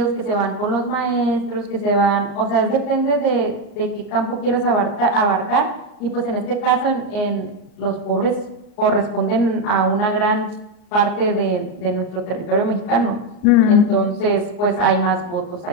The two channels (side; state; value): right; late; 39 ms